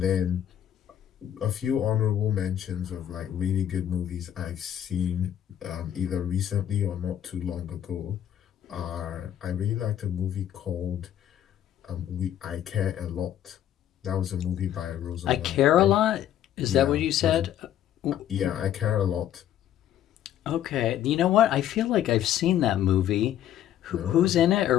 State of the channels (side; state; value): right; quieter; 11.0 dB